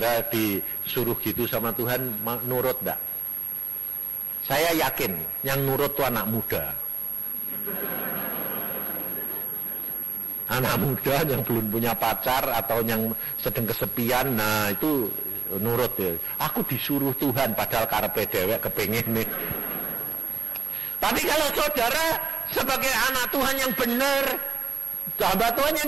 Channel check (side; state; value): left; quieter; 5.5 dB